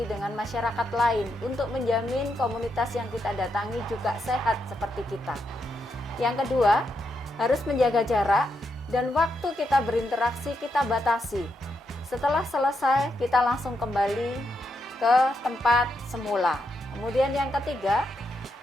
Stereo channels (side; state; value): both; normal; correlation 0.82